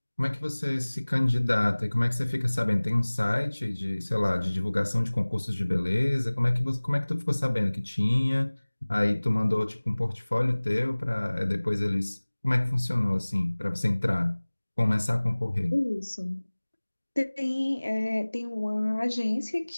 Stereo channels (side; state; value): both; inverted; correlation -1.00